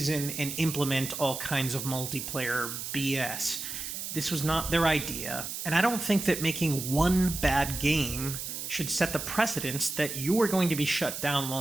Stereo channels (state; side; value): noise; right; hiss, 6 dB below the sound